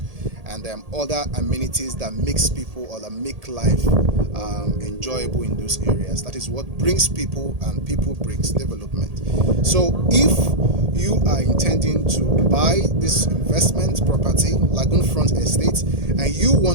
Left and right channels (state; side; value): late; left; 1.8 ms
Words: and other amenities that makes people or that make life enjoyable in those areas. That is what brings people, and people brings development. So if you are intending to buy this investment property, Lagoon Front Estate, and you